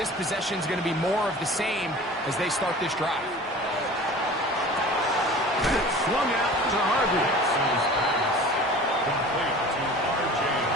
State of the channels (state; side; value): normal; both; correlation 0.41